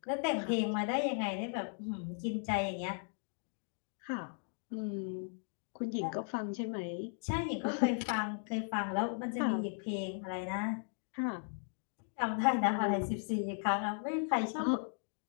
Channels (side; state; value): right; silent; 53 dB below the other